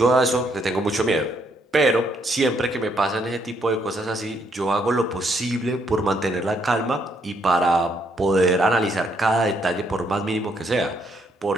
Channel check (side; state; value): both; normal; correlation 0.72